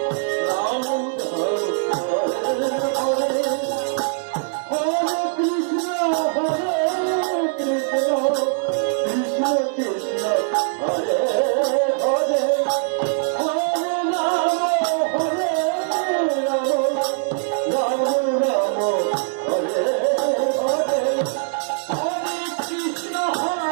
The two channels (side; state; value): left; silent; digital silence